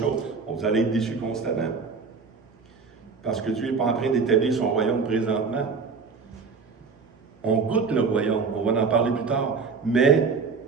Vous allez être déçus constamment. Parce que Dieu n'est pas en train d'établir son royaume présentement. On goûte le royaume, on va en parler plus tard. Mais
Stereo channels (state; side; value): quieter; left; 5.0 dB